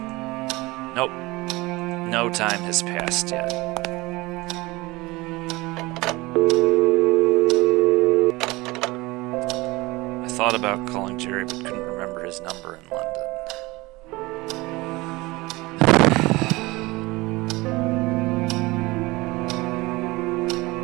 Nope. No time has passed yet. I thought about calling Jerry, but couldn't remember his number in London.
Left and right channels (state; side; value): quieter; left; 21.9 dB